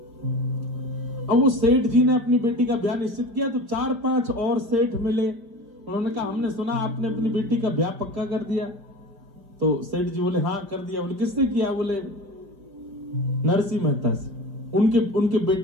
अब वो सेठ जी ने अपनी बेटी का ब्याह निश्चित किया तो 4-5 और सेठ मिले, उन्होंने कहा हमने सुना आपने अपनी बेटी का ब्याह पक्का कर दिया। तो सेठ जी बोले हाँ कर दिया। बोले किससे किया? बोले नरसिंह मेहता से, उनके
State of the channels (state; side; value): late; left; 4.9 ms